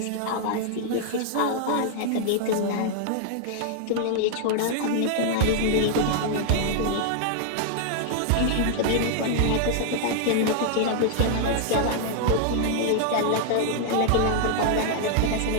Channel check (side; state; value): both; different; correlation 0.00